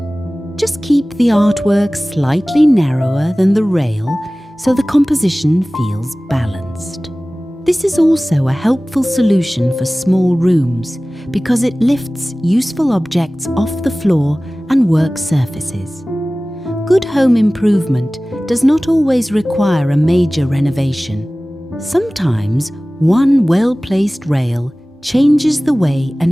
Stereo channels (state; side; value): normal; both; correlation 0.98